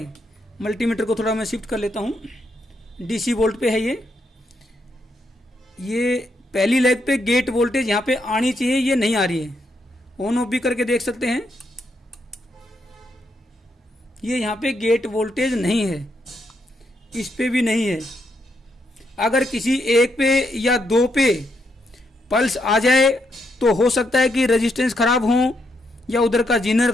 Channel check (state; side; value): normal; both; correlation 0.79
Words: मल्टीमीटर को थोड़ा मैं शिफ्ट कर लेता हूँ। DC वोल्ट पे है ये पहली लेग पे गेट वोल्टेज यहाँ पे आनी चाहिए, ये नहीं आ रही है। ऑन ऑफ भी करके देख सकते हैं, ये यहाँ पे गेट वोल्टेज नहीं है, इस पे भी नहीं है। अगर किसी एक पे या 2 पे पल्स आ जाए तो हो सकता है कि रेजिस्टेंस खराब हो, या उधर का जीनर